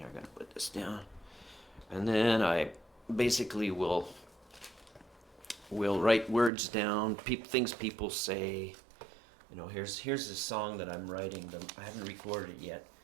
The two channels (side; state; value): left; drops out; at 6.5 s